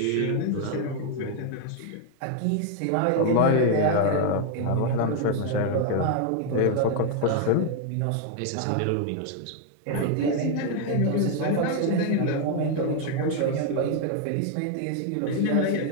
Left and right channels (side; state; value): both; different; correlation 0.00